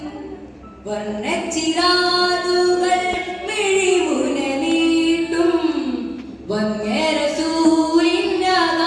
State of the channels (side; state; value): both; identical; correlation 1.00